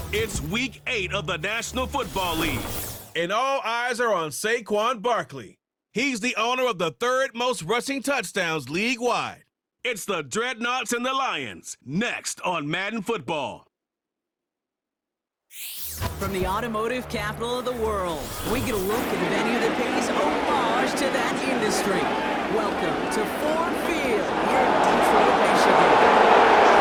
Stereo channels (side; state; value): both; identical; correlation 1.00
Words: It's Week 8 of the National Football League. And all eyes are on Saquon Barkley. He's the owner of the third most rushing touchdowns league-wide. It's the Dreadnoughts and the Lions, next on Madden Football. From the automotive capital of the world, we get a look at the venue that pays homage to that industry. Welcome to Ford Field here in Detroit, Michigan.